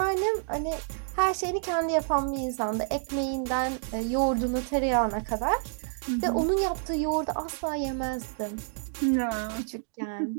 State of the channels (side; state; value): left; silent; digital silence